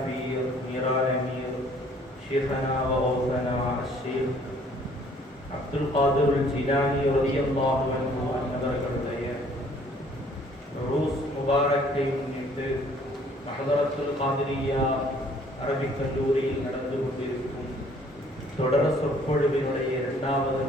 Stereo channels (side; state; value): both; normal; correlation 0.59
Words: பீர் மீரான மீர் ஷேഖனா வஹௌசனா அஷ்ஷேக் அப்துல் காதிர் ஜிலானி ரலியல்லாஹு அன்ஹு அவர்களுடைய ரூஸ் முபாரக்கை முன்னிட்டு ஹதரத்துல் காதிரியா அரபிக் கல்லூரியில் நடந்து கொண்டிருக்கும் தொடர சொற்பொழிவினுடைய 2வது